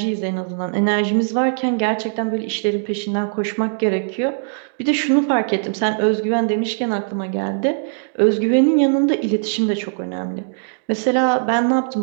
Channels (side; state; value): left; silent; digital silence